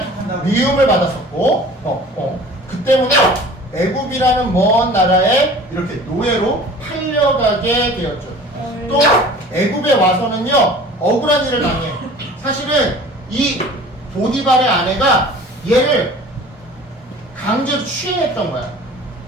미움을 받았었고, 그 때문에 애굽이라는 먼 나라에 이렇게 노예로 팔려가게 되었죠. 또 애굽에 와서는요, 억울한 일을 당해요. 사실은 이 보디발의 아내가 얘를 강제로 취해냈던 거야.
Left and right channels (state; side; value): normal; both; correlation 0.44